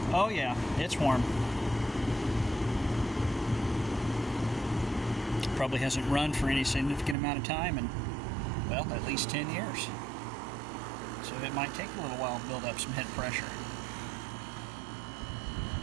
Oh yeah, it's warm. Probably hasn't run for any significant amount of time in, well, at least 10 years. So it might take a little while to build up some head pressure.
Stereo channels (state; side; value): drops out; left; at 7.2 s